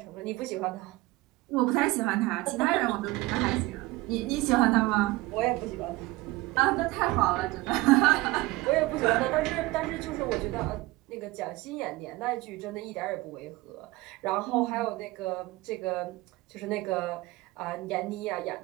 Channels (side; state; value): left; quieter; 20.3 dB